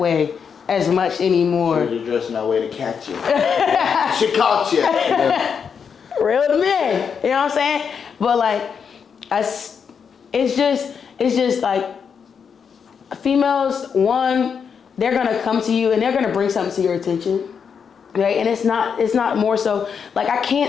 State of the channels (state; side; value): quieter; right; 6.6 dB